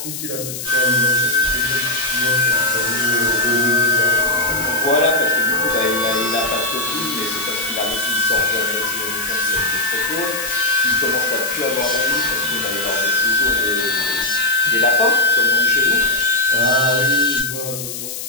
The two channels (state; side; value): noise; left; hiss, 7 dB below the sound